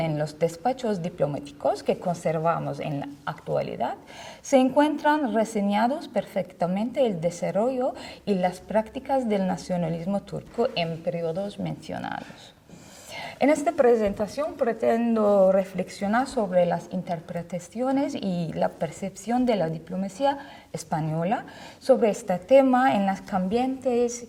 los despachos diplomáticos que conservamos en la actualidad, se encuentran reseñados perfectamente el desarrollo y las prácticas del nacionalismo turco en periodos mencionados. En esta presentación pretendo reflexionar sobre las interpretaciones y la percepción de la diplomacia española sobre este tema en las cambiantes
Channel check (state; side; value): identical; both; correlation 1.00